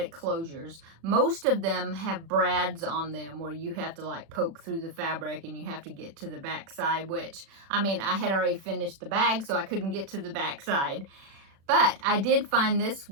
closures. Most of them have brads on them where you have to like poke through the fabric and you have to get to the back side, which, I had already finished the bag, so I couldn't get to the back side. But I did find this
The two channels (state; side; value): late; left; 36 ms